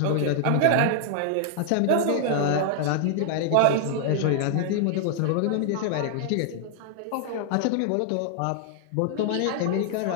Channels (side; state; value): both; different; correlation 0.00